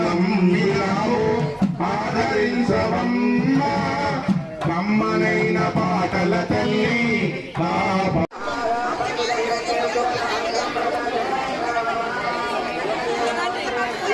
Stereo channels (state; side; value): identical; both; correlation 1.00